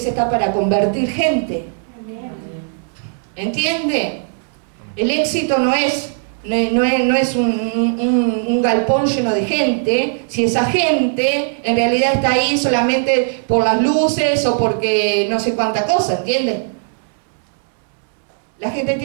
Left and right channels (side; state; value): left; silent; digital silence